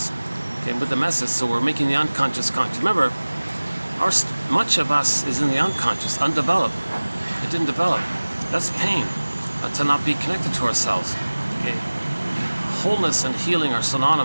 okay, with the message. So we're making the unconscious conscious. Remember, much of us is in the unconscious, undeveloped. It didn't develop. That's pain, to not be connected to ourselves. Okay, wholeness and healing are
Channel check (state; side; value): inverted; both; correlation -1.00